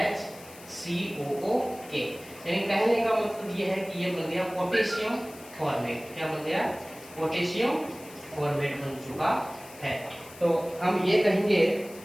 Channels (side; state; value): left; noise; hiss, 19 dB below the sound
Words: HCOOK। यानी कहने का मतलब ये है कि ये बन गया पोटेशियम फॉर्मेट। क्या बन गया, पोटेशियम फॉर्मेट बन चुका है। तो हम ये कहेंगे